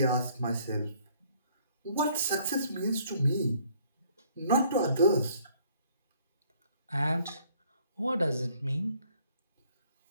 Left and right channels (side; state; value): both; inverted; correlation -0.62